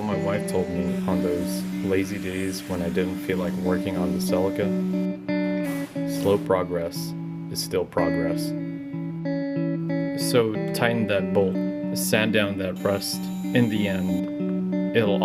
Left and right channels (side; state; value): both; identical; correlation 1.00